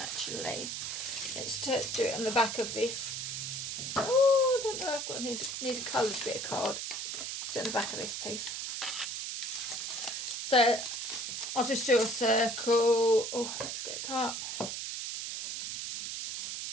Let's do it on the back of this. Oh, I don't know. I've got need a coloured bit of card. Let's do it on the back of this piece. So I'll just do a circle. Oh, let's get a cup.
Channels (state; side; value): noise; right; hiss, 4 dB below the sound